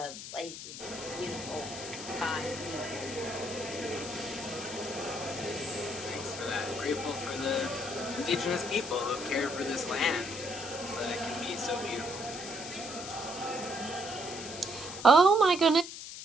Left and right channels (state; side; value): noise; left; hiss, 10 dB below the sound